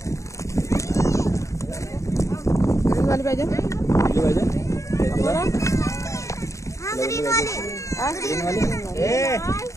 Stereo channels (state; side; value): late; right; 0.15 ms